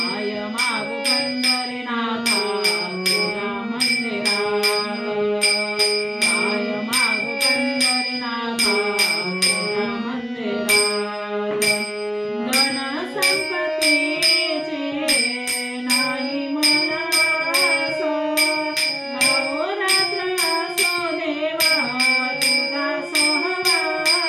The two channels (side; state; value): both; identical; correlation 1.00